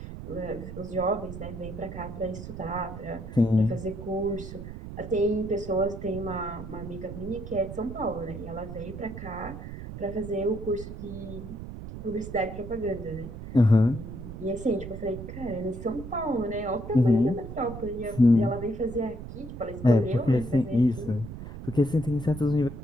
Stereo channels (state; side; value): noise; right; rumble, 10 dB below the sound